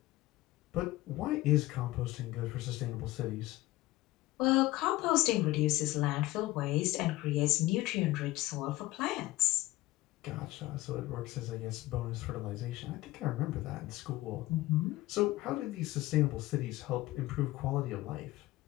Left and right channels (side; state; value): right; quieter; 18.1 dB